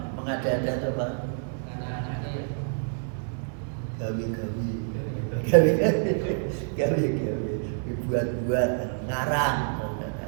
mengada-ada itu apa? Gawi. Dibuat-buat, ngarang.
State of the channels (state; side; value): silent; left; digital silence